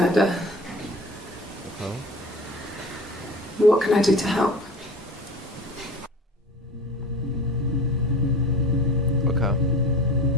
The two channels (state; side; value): normal; both; correlation 0.38